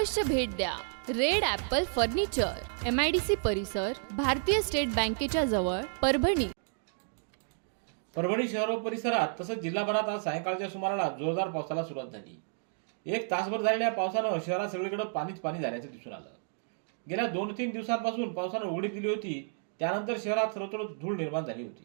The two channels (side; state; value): left; silent; digital silence